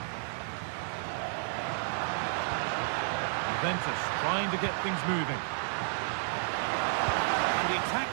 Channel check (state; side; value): silent; left; 57 dB below the other